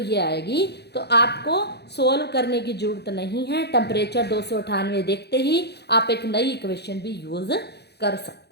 आएगी। तो आपको सोल्व करने की ज़रूरत नहीं है, टेम्परेचर 298 देखते ही आप एक नई इक्वेशन भी यूज़ कर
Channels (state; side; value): late; right; 0.48 ms